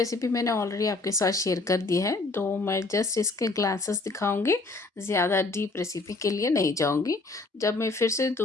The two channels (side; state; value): right; quieter; 3.5 dB